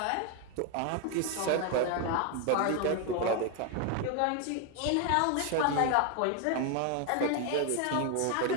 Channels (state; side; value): different; both; correlation 0.01